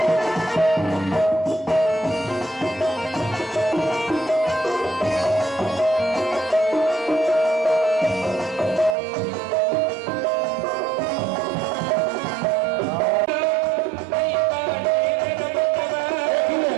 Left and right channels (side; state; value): left; drops out; at 9.0 s